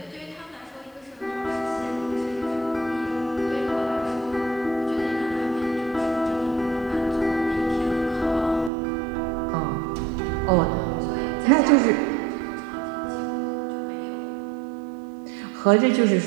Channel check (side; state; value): left; drops out; at 8.7 s